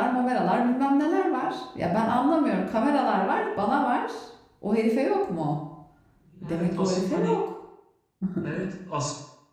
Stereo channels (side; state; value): both; identical; correlation 1.00